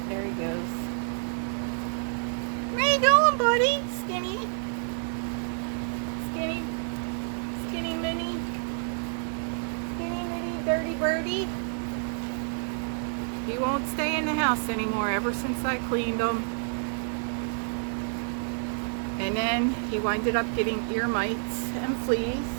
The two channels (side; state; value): left; silent; 59 dB below the other